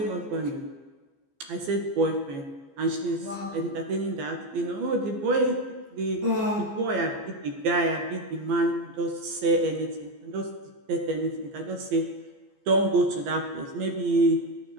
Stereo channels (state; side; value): late; left; 15 ms